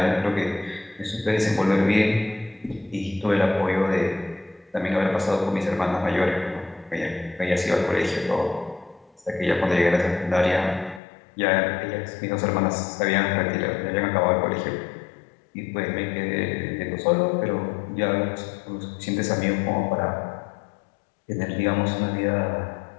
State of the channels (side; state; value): right; drops out; at 11.0 s